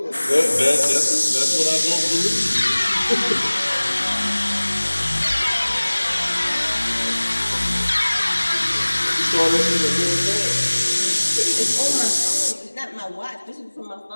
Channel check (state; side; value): inverted; both; correlation -1.00